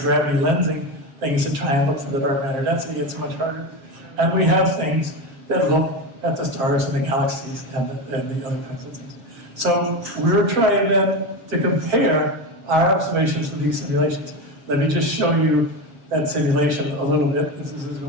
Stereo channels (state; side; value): late; left; 7.4 ms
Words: things that try and look for the dark matter density. It's much harder. And we have things that look at the stars and the galaxies and the other kinds of things. So we're trying then to compare our observations with these simulations. Let me just show you that simulation a little bit, as this is